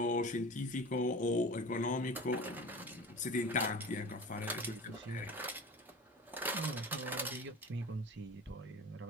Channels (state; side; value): normal; both; correlation 0.36